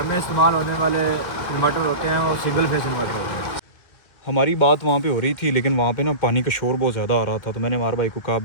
में इस्तेमाल होने वाले इन्वर्टर होते हैं वो सिंगल फेस इन्वर्टर होते हैं। हमारी बात वहाँ पे हो रही थी, लेकिन वहाँ पे ना पानी का शोर बहुत ज़्यादा आ रहा था, तो मैंने अमार भाई को कहा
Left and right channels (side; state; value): right; late; 1.6 ms